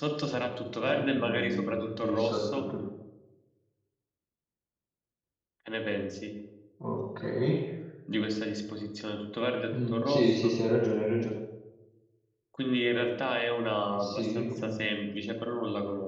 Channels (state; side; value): identical; both; correlation 1.00